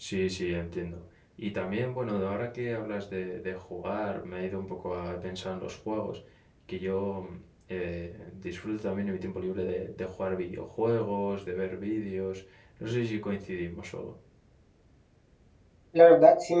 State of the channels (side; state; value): both; identical; correlation 1.00